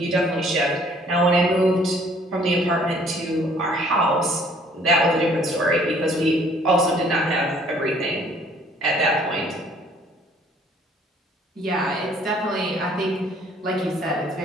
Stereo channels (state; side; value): normal; both; correlation 0.58